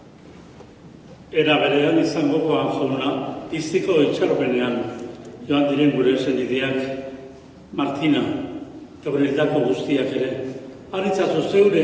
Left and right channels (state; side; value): identical; both; correlation 1.00